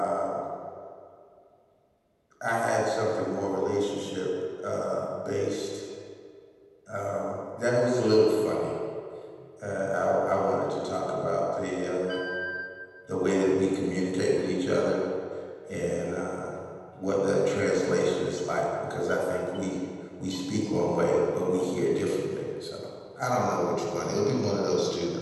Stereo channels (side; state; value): both; identical; correlation 1.00